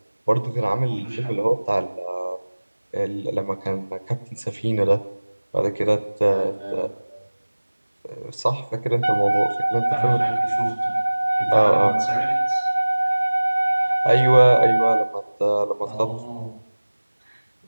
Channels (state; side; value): inverted; both; correlation -1.00